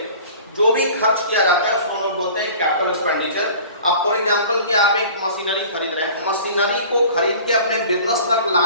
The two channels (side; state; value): both; inverted; correlation -0.44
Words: जो भी खर्च किया जाता है उसको हम लोग बोलते हैं कैपिटल एक्सपेंडिचर। अब फॉर एग्जांपल कि आप एक मशीनरी खरीद रहे हैं, मशीनरी को खरीद के अपने बिजनेस तक